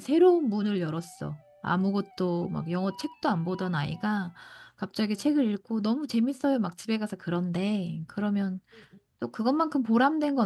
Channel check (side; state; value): both; identical; correlation 1.00